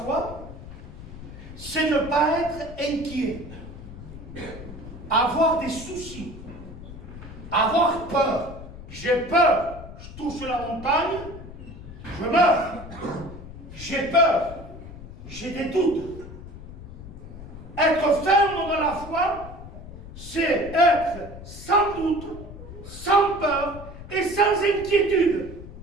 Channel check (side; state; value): left; noise; rumble, 13 dB below the sound